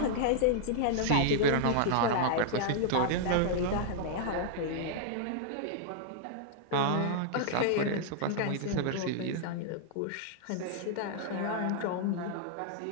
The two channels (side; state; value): both; different; correlation -0.01